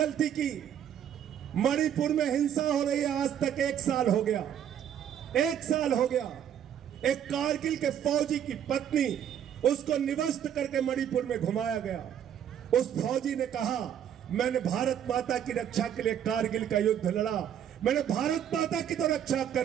की? मणिपुर में हिंसा हो रही है, आज तक 1 साल हो गया, 1 साल हो गया। एक कारगिल के फौजी की पत्नी, उसको निवस्त करके मणिपुर में घुमाया गया। उस फौजी ने कहा मैंने भारत माता की रक्षा के लिए कारगिल का युद्ध लड़ा, मैंने भारत माता की तो रक्षा कर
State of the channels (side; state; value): left; quieter; 9.5 dB